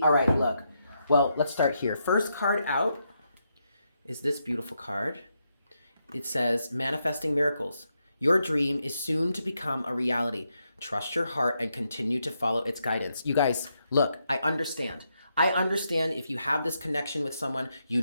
all right, look. Well, let's start here. First card out is this beautiful card. It says, manifesting miracles. Your dream is soon to become a reality. Trust your heart and continue to follow its guidance. You guys, look, I understand. I understand if you have this connection with someone, you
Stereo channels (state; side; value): inverted; both; correlation -0.81